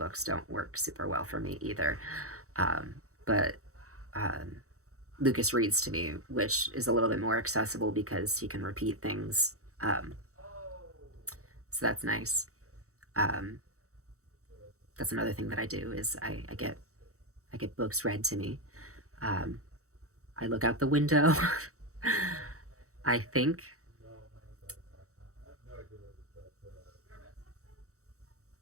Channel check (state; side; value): late; left; 0.64 ms